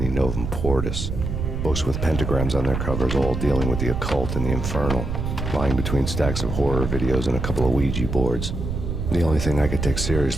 Novum Portus. Books with pentagrams on their covers, all dealing with the occult and the infernal, lying between stacks of horror videos and a couple of Ouija boards. The only thing I could take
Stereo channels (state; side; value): noise; right; rumble, 3 dB below the sound